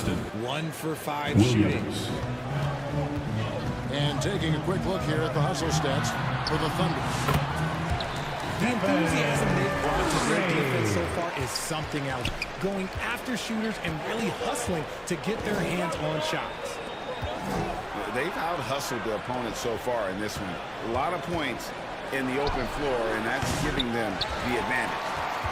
1-for-5 shooting. And taking a quick look here at the hustle stats for the Thunder. The enthusiasm they've brought to their defense so far is something else. Going after shooters and really hustling to get their hands on shots. They've out-hustled their opponents so far in this one. A lot of points in the open floor, and that's giving them the advantage.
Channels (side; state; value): both; identical; correlation 1.00